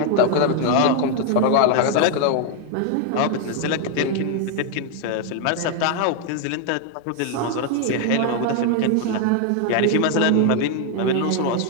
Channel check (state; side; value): different; both; correlation 0.01